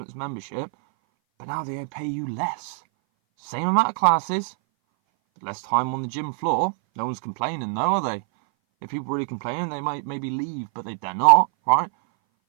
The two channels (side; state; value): left; silent; 59 dB below the other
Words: membership, but now they pay you less. Same amount of classes, less time on the gym floor. No one's complaining, though, are they? If people are really complaining, they might maybe leave, but they're not, right?